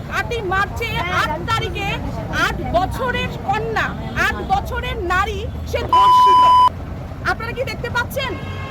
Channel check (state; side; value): identical; both; correlation 1.00